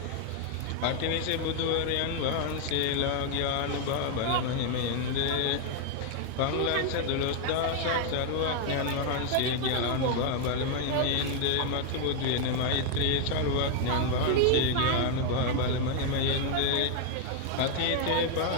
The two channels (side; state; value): both; different; correlation 0.00